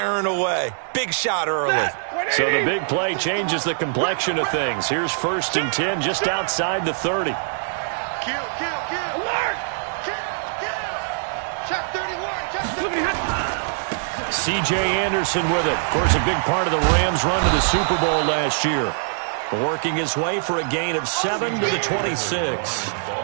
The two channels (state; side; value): silent; left; digital silence